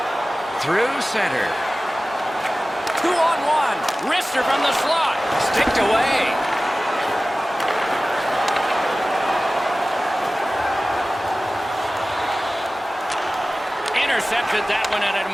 Through center. 2-on-1. Wrister from the slot. Sticked away. Intercepted that one at an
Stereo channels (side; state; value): both; normal; correlation 0.97